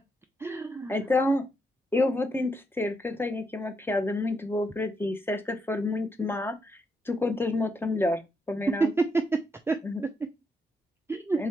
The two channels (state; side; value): normal; both; correlation 0.80